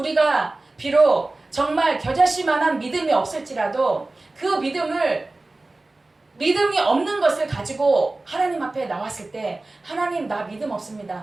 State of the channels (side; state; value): left; quieter; 3.0 dB